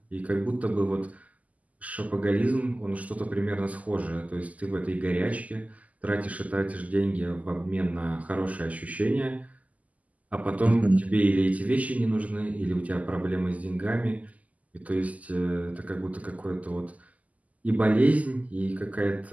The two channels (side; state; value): left; late; 0.074 ms